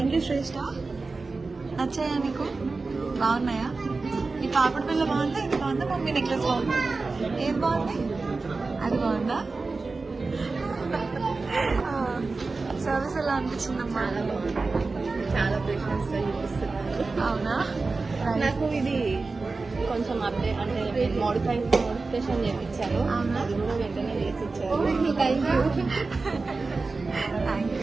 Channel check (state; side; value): quieter; left; 3.9 dB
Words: యూ శ్రేష్ఠ. నచ్చాయా నీకు? బాగున్నాయా? ఈ పాపడి పిల్ల బాగుందా? ఇది బాగుందా? మమ్మీ నెక్లెస్ బాగుందా? ఏం బాగుంది? అది బాగుందా? సర్వీస్ ఎలా అనిపించిందమ్మా? చాలా పేషెన్స్ అవునా? నాకు ఇది కొంచెం అప్డేట్ అంటే మోడిఫికేషన్ చేయించాను. అది కూడా వెంటనే చేసి ఇచ్చారు. Thank